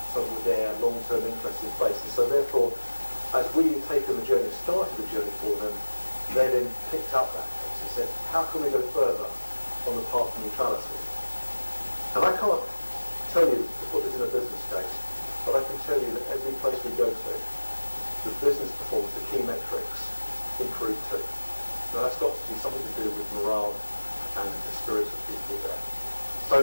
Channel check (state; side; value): inverted; both; correlation -1.00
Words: something with their long-term interest in place. And so therefore, as we had taken the journey, started the journey for them, they then picked up that case and said, how can we go further on the path of neutrality? And I can't tell you to put this in a business case, but I can tell you that every place we go to, the business performance, the key metrics, improve too. Now that's got to be something to do with morale and the spirits of people there.